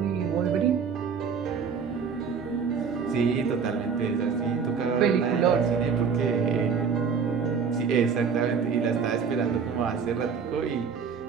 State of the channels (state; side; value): quieter; left; 6.1 dB